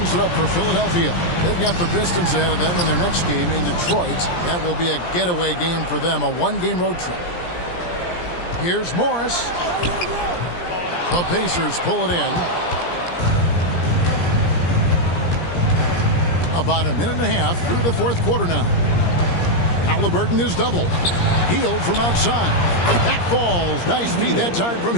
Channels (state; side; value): late; right; 17 ms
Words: it up for Philadelphia. They've got the Pistons ahead of them in their next game in Detroit. That will be a getaway game for them, a one-game road trip. Here's Morris. The Pacers pull it in. About a minute and a half through the fourth quarter now. Halliburton is doubled. Hield from outside. That falls. Nice feed that time from